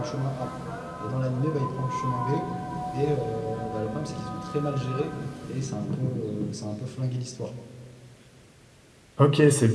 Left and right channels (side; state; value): both; identical; correlation 1.00